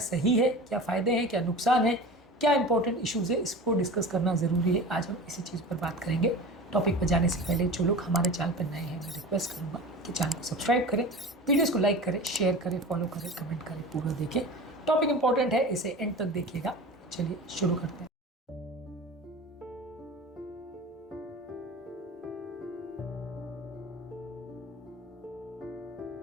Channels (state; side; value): normal; both; correlation 0.34